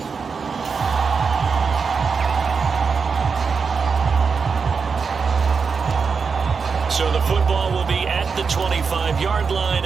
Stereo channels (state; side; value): quieter; left; 5.4 dB